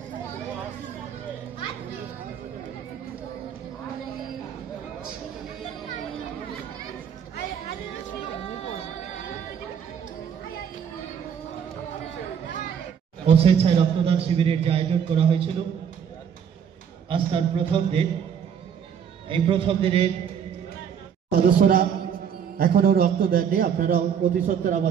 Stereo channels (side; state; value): left; quieter; 7.9 dB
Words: স্বেচ্ছায় রক্তদান শিবিরের যে আয়োজন করা হয়েছিল, আজ তার প্রথম দিন। এই প্রথম দিনে সদস্যরা এখনো রক্ত দেননি। আপনারা অতি সত্বর